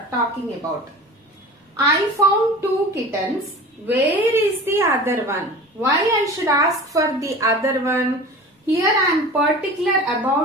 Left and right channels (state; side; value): normal; both; correlation 0.37